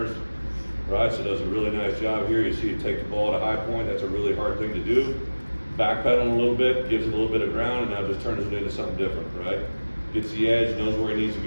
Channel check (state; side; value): inverted; both; correlation -1.00